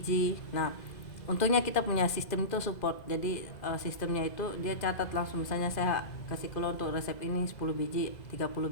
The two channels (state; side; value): late; right; 2.0 ms